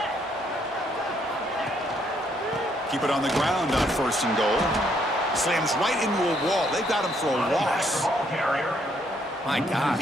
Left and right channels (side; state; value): both; normal; correlation 0.70